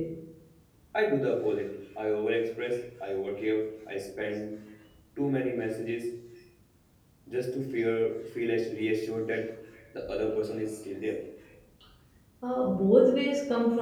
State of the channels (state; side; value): identical; both; correlation 1.00